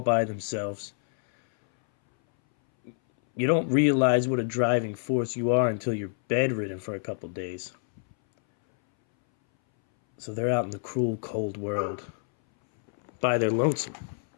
themselves. You don't realize what a driving force you are until you're bedridden for a couple days. So they're out in the cruel, cold world by their lonesome.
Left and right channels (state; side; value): silent; right; 60 dB below the other